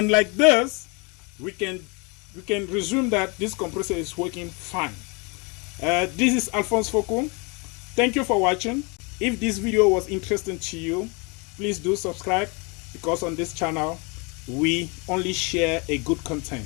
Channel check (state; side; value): quieter; right; 30.5 dB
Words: like this, we can resume that this compressor is working fine. This is Alphonse Foucault. Thank you for watching. If this video was interesting to you, please do subscribe, because on this channel we only share a good content.